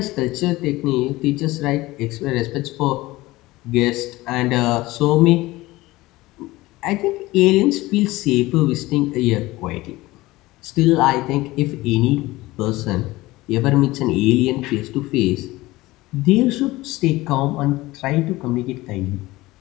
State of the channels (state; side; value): quieter; right; 19.2 dB